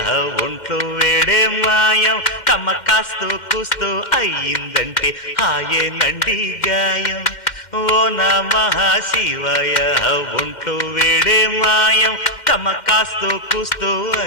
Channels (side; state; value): right; late; 2.1 ms